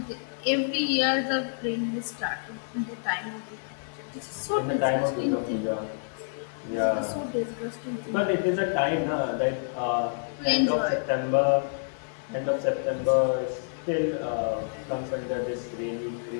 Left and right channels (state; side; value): silent; right; digital silence